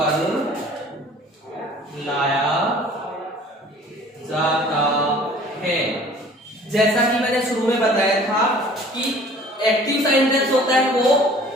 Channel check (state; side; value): normal; both; correlation 0.50